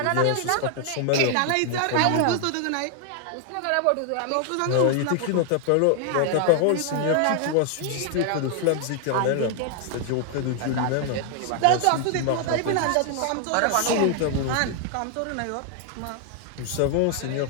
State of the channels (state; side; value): different; both; correlation 0.00